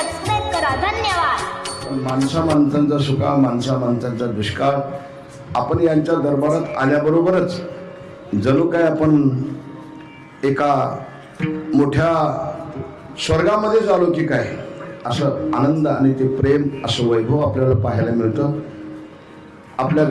करा. धन्यवाद. माणसांचा सुका माणसांचा दुष्काळ. आपण यांच्या दरबारात आल्याबरोबरच जणू काय आपण एका मोठ्या स्वर्गामध्येच आलो की काय असं आनंद आणि ते प्रेम असं वैभव आपल्याला पाहायला मिळतं. आपल्या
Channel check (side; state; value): both; identical; correlation 1.00